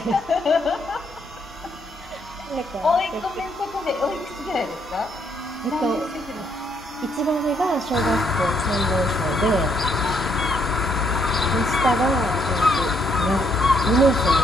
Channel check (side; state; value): both; normal; correlation 0.72